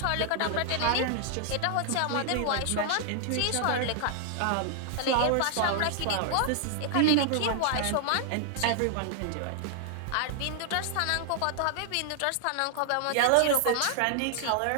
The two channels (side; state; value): both; different; correlation 0.00